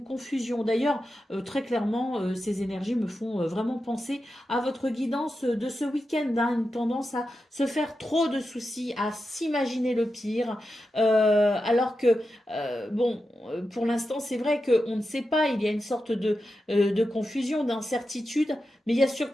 confusion. D'ailleurs très clairement ces énergies me font vraiment penser à votre guidance de ce week-end, hein, une tendance à se faire trop de soucis, à s'imaginer le pire, alors que bon, pour l'instant, c'est vrai qu'on ne sait pas, il y a une sorte de confusion, d'incertitude, mais il y a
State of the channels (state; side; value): normal; both; correlation 0.90